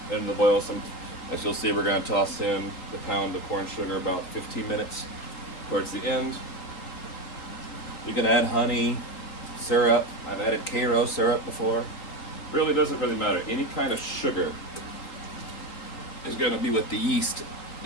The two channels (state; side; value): late; right; 3.9 ms